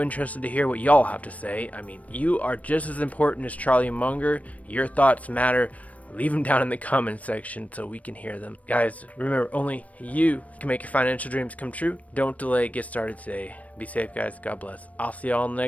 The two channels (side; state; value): right; late; 0.068 ms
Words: interested to hear what y'all have to say. I mean, you are just as important as Charlie Munger. Your thoughts matter. Leave them down in the comment section so we can hear them. Guys, remember, only you can make your financial dreams come true. Don't delay. Get started today. Be safe, guys. God bless. I'll see y'all in the